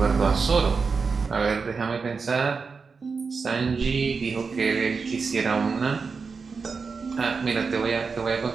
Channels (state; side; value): quieter; left; 5.0 dB